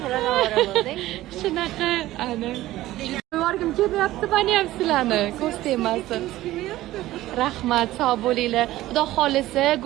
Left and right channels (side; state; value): left; quieter; 15.8 dB